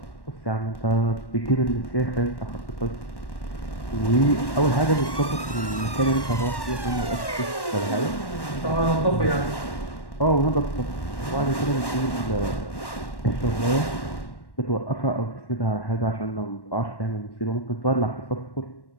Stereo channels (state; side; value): late; right; 1.1 ms